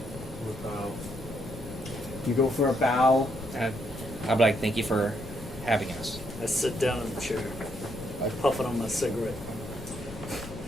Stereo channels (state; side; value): noise; left; rumble, 13 dB below the sound